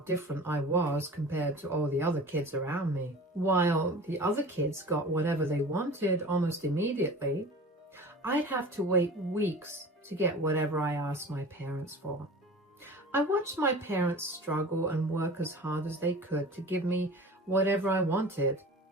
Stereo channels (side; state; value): both; normal; correlation 0.39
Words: I was compared to all the other kids around me. While the other kids got whatever they wanted almost immediately, I'd have to wait weeks to get whatever I asked my parents for. I watched my parents struggle and work as hard as they could to give me whatever I wanted.